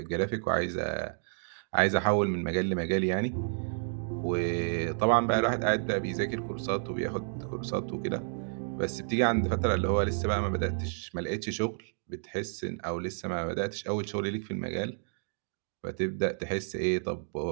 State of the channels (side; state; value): left; silent; digital silence